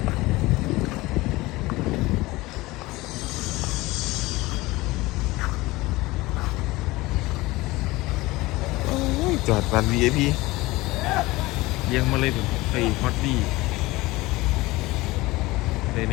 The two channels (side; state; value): right; quieter; 20.4 dB